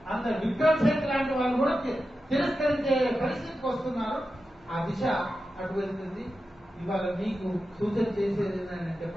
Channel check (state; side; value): normal; both; correlation 0.91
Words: అందరు విక్రమ్ సేత్ లాంటి వాళ్ళు కూడా తిరస్కరించే పరిస్థితికి వస్తున్నారు. ఆ దిశ అటు వెళ్తుంది. ఇవాళ మీకు సూచన చేసేది ఏంటంటే